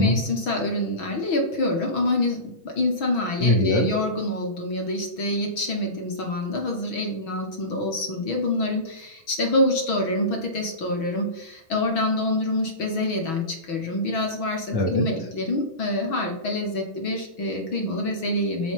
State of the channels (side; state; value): right; late; 6.2 ms